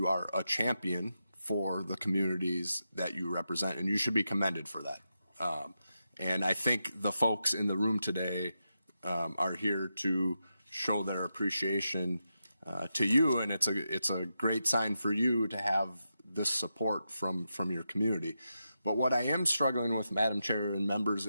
are a champion for the communities that you represent, and you should be commended for that. And I think the folks in the room today are here to show their appreciation to you, and it's a great sign for you to have this support from your community. But what I am struggling with, Madam Chair and members,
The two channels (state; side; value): inverted; both; correlation -0.87